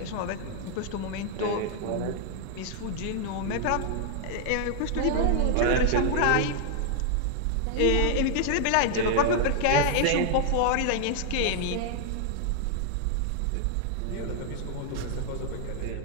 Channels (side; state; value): both; different; correlation 0.00